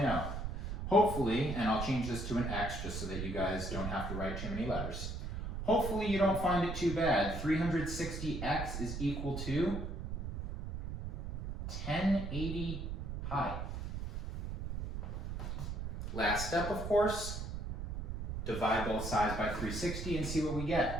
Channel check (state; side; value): noise; right; rumble, 5 dB below the sound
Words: Hopefully, and I'll change this to an x just so that you guys don't have to write too many letters. Hopefully you don't find it too bad. 360x is equal to 1080 pi. Last step, of course, divide both sides by 360 and see what we